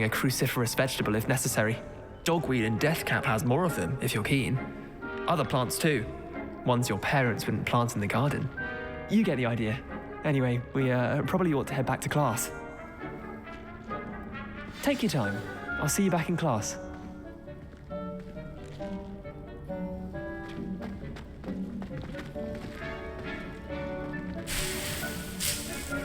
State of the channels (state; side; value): identical; both; correlation 1.00